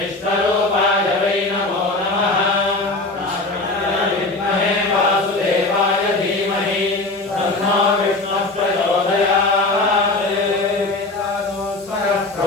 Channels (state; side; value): quieter; right; 3.1 dB